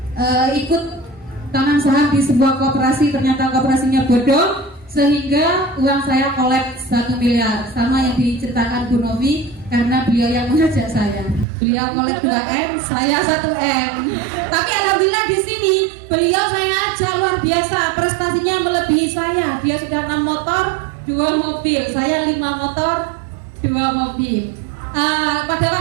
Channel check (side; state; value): left; drops out; at 11.5 s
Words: ikut tanam saham di sebuah koperasi. Ternyata koperasinya bodong, sehingga uang saya kolek 1 miliar, sama yang diceritakan Bu Novi, karena beliau yang mengajak saya. Beliau kolek 2M, saya 1M. Tapi alhamdulillah di sini beliau saya ajak luar biasa, prestasinya melebihi saya. Dia sudah 6 motor, 2 mobil, saya 5 motor, 2 mobil. Pada